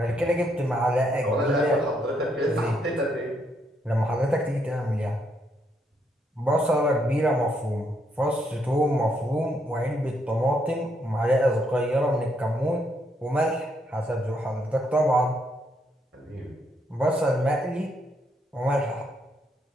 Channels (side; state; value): both; normal; correlation 0.75